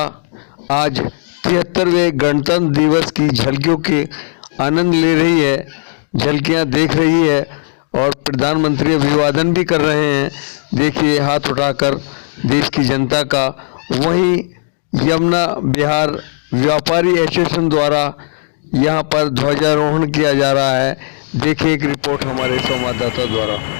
आज 73वें गणतंत्र दिवस की झलकियों के आनंद ले रही है, झलकियां देख रही है और प्रधानमंत्री अभिवादन भी कर रहे हैं। देखिए हाथ उठाकर देश की जनता का। वहीं यमुना बिहार व्यापारी एसोसिएशन द्वारा यहां पर ध्वजारोहण किया जा रहा है। देखिए एक रिपोर्ट हमारे संवाददाता द्वारा।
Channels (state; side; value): silent; right; digital silence